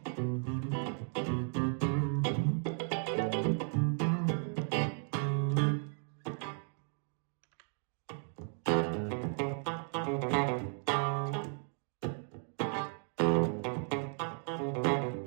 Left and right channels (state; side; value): silent; left; 55 dB below the other